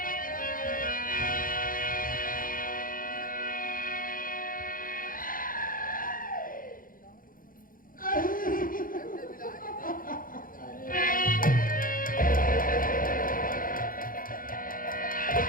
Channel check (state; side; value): late; right; 0.40 ms